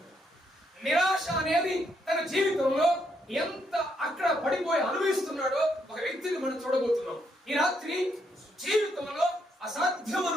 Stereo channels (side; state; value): both; normal; correlation 0.76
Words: నిరాశ అనేది తన జీవితంలో ఎంత అక్కడ పడిపోయి అనుభవిస్తున్నాడో ఒక వ్యక్తిని మనం చూడబోతున్నాం. ఈ రాత్రి జీవితంలో అసాధ్యం